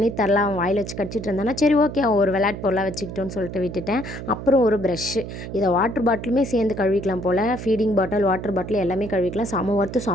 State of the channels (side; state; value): right; noise; hum, 9 dB below the sound